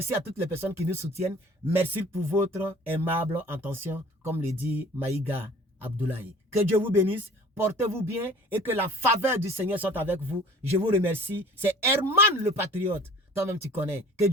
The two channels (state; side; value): normal; both; correlation 0.48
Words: à toutes les personnes qui nous soutiennent. Merci pour votre aimable attention, comme le dit Maïga Abdoulaye. Que Dieu vous bénisse. Portez-vous bien et que la faveur du Seigneur soit avec vous. Je vous remercie. C'est Herman le Patriote. Toi-même, tu connais. Que